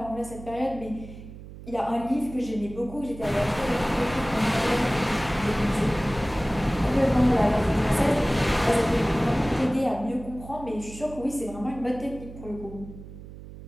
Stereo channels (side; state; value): right; noise; hum, 15 dB below the sound